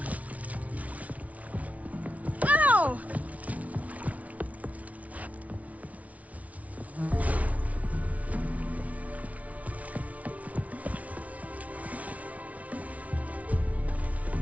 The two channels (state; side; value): late; left; 0.068 ms